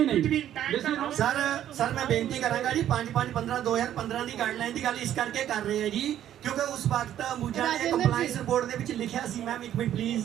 ਸਰ ਮੈਂ ਬੇਨਤੀ ਕਰਾਂਗਾ ਜੀ 5/5/15 2015 ਦੀ ਗਾਈਡਲਾਈਨ ਦੀ ਗੱਲ ਇਸ ਕਰਕੇ ਕਰ ਰਹੇ ਹਾਂ ਜੀ ਕਿਉਂਕਿ ਉਸ ਵਕਤ ਅੰਬੂਜਾ ਨੇ ਕੰਪਲਾਈਂਸ ਰਿਪੋਰਟ ਦੇ ਵਿੱਚ ਲਿਖਿਆ ਸੀ, ਮੈਮ ਇੱਕ ਮਿੰਟ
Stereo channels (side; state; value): left; quieter; 11.3 dB